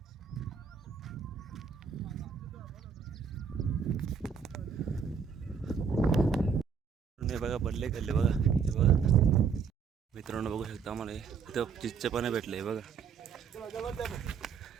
बघा बल्ले खाल्ले बघा. हे बघा मित्रांनो बघू शकता आम्हाला इथं चिच्चे पण भेटले बघा.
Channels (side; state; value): left; quieter; 6.3 dB